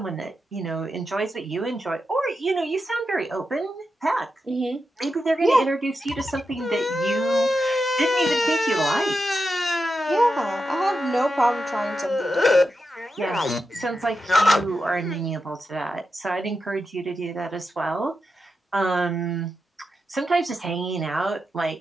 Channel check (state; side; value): normal; both; correlation 0.88